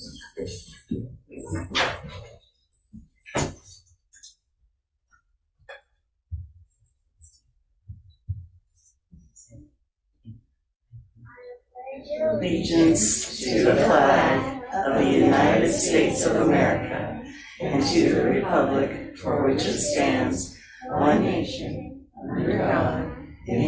Allegiance to the flag of the United States of America and to the republic for which it stands, one nation, under God,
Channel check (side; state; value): both; identical; correlation 1.00